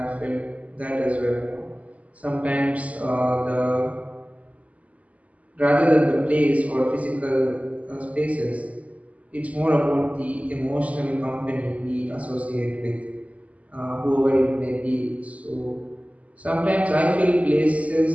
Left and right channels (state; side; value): late; left; 0.069 ms